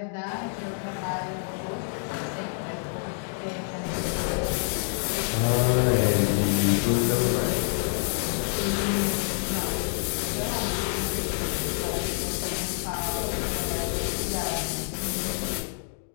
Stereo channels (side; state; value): right; silent; 60 dB below the other